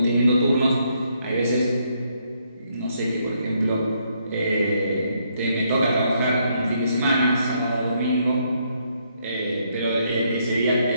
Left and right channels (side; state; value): both; inverted; correlation -0.74